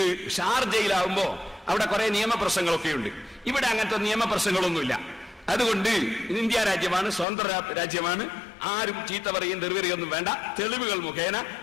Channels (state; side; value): drops out; right; at 7.2 s